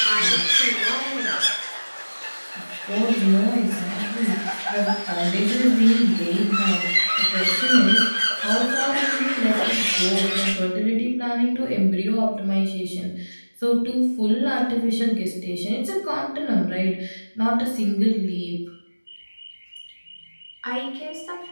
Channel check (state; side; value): inverted; both; correlation -1.00